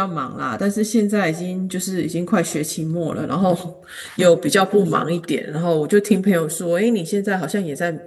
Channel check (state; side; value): identical; both; correlation 1.00